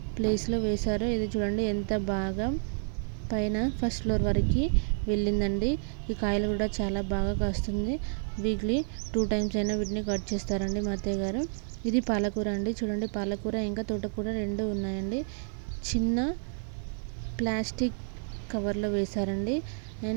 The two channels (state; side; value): silent; left; digital silence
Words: ప్లేస్లో వేశారు. ఇది చూడండి ఎంత బాగా పైన ఫస్ట్ ఫ్లోర్ వరకు వెళ్ళిందండి. ఈ కాయలు కూడా చాలా బాగా కాస్తుంది. వీక్లీ 2 times అయినా వీటిని కట్ చేస్తారండి మా అత్తయ్య గారు. ఇది పాలకూర అండి. చూడండి, పాలకూర ఇంకా తోటకూర రెండు ఉన్నాయండి. చిన్న ప్లాస్టిక్ కవర్లో వేశారండి.